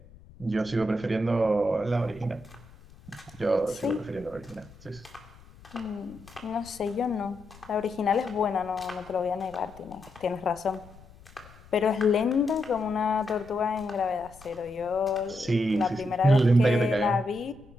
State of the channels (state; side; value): noise; left; rumble, 22 dB below the sound